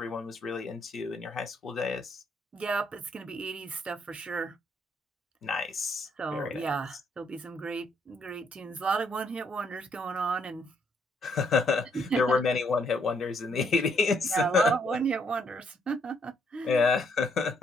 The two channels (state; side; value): normal; both; correlation 0.71